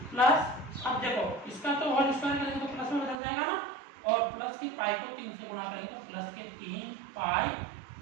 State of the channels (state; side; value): drops out; left; at 3.2 s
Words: प्लस अब देखो इसका तो होल स्क्वायर करेंगे तो प्लस में बदल जाएगा ना, और प्लस की पाई को 3 से गुना करेंगे तो प्लस के 3